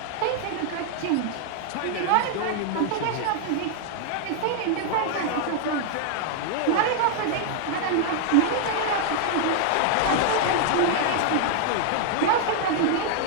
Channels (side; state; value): both; different; correlation 0.00